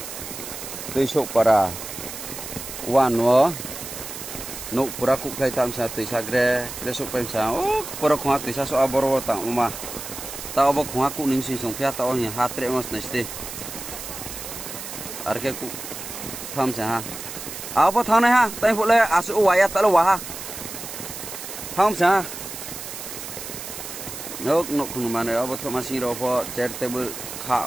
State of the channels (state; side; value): noise; right; hiss, 9 dB below the sound